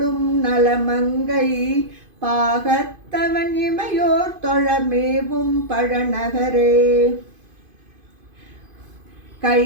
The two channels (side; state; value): left; late; 2.5 ms